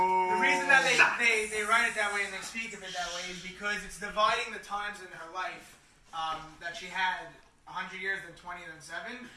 reason that they write it that way and they speak of it that way is because it's dividing the times in her life that she had 100 years, then 20, then 7.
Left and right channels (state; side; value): identical; both; correlation 1.00